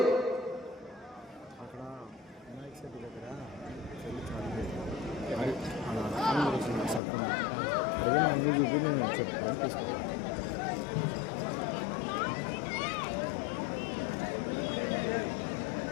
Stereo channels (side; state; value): right; drops out; at 7.0 s